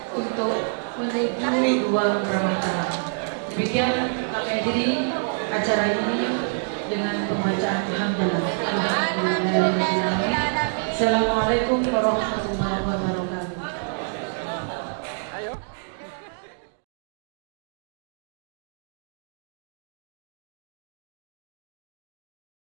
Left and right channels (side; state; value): left; silent; 61 dB below the other